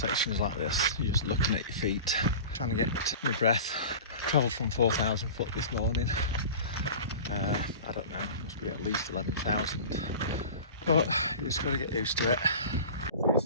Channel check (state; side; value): inverted; both; correlation -0.35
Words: like this, you're just looking at your feet, trying to get my breath. Travelled from 4,000 foot this morning. I don't know, must be at least 11,000. But you just got to get used to it.